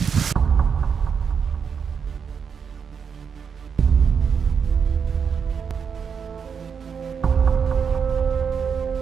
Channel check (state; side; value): quieter; left; 6.6 dB